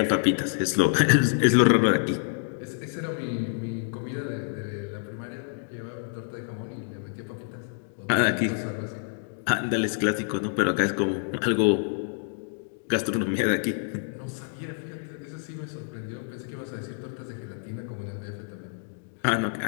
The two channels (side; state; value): right; silent; digital silence